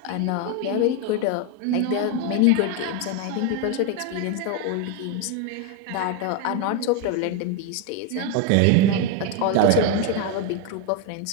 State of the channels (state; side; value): different; both; correlation 0.02